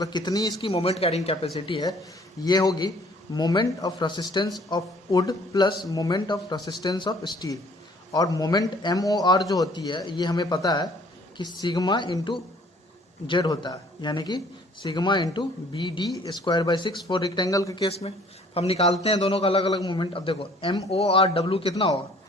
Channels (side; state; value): both; normal; correlation 0.56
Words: कितनी इसकी मोमेंट कैरिंग कैपेसिटी है, ये होगी moment of resistance of would plus moment of resistance of steel. और मोमेंट MOR जो होती है ये हमें पता है कि सिग्मा इंटू जेड होता है, यानी कि sigma into BD²/6 for rectangle के केस में। हम निकालते हैं दोनों का अलग अलग मोमेंट। अब देखो MORW कितना होगा?